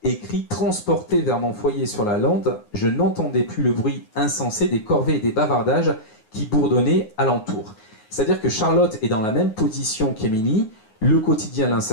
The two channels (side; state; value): right; late; 9.5 ms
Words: écrit « Transporté vers mon foyer sur la lande, je n'entendais plus le bruit insensé des corvées et des bavardages qui bourdonnaient alentour. » C'est-à-dire que Charlotte est dans la même position qu'Émilie, le quotidien